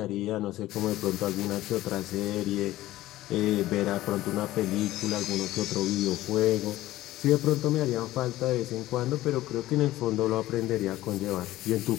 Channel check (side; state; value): right; quieter; 15.7 dB